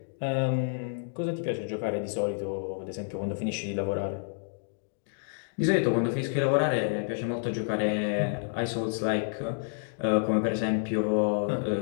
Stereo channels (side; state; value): right; silent; digital silence